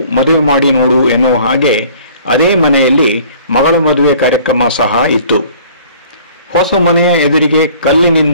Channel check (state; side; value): inverted; both; correlation -0.52